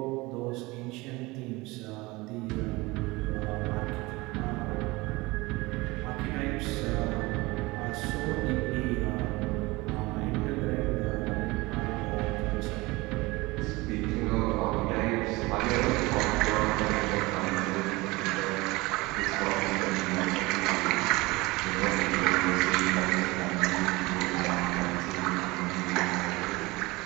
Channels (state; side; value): quieter; left; 22.4 dB